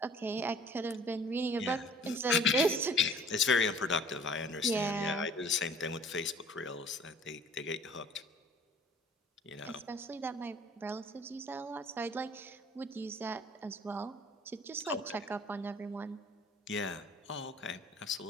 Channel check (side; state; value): both; normal; correlation 0.51